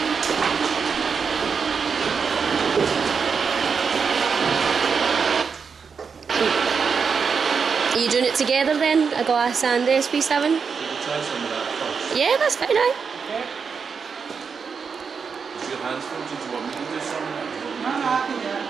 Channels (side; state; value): left; quieter; 5.8 dB